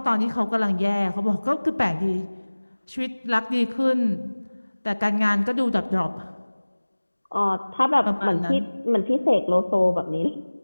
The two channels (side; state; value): both; inverted; correlation -1.00